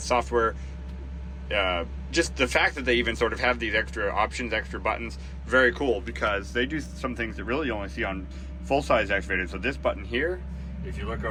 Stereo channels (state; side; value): identical; both; correlation 1.00